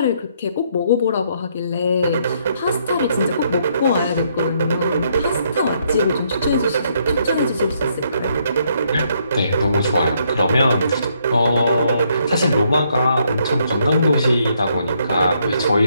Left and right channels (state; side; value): inverted; both; correlation -0.72